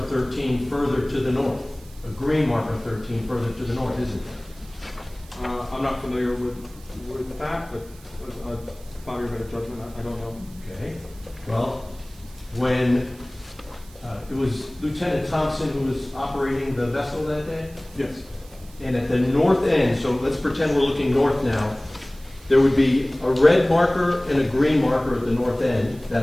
13 further to the north. A green marker 13 further to the north, isn't there? I'm not familiar with that, but upon your better judgment, I don't know. Okay. Well, when it was Lieutenant Thompson who was operating the vessel that day? Yes. And at the north end, so let's pretend we're looking north now, there would be a red marker and a green marker at the north end that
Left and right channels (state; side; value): noise; right; hiss, 24 dB below the sound